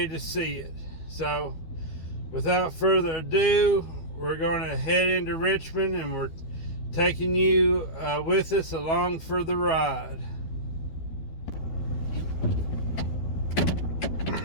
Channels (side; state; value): right; late; 12 ms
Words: to see it. So without further ado, we're going to head into Richmond, and we're taking you with us along for the ride.